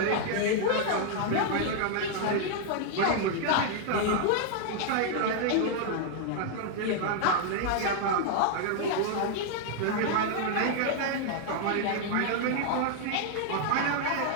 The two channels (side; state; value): both; different; correlation 0.00